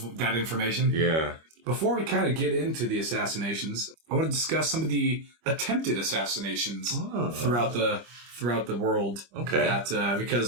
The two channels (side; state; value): left; late; 25 ms